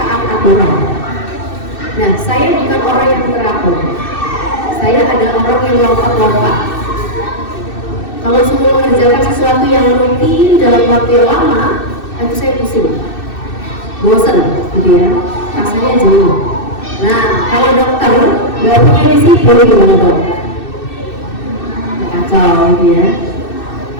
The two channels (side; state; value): right; late; 2.6 ms